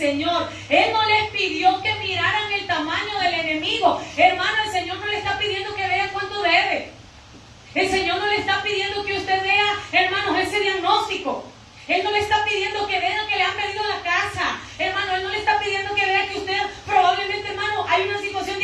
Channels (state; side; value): identical; both; correlation 1.00